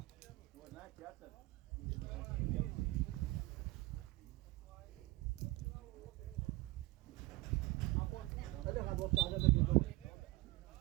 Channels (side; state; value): left; quieter; 21.4 dB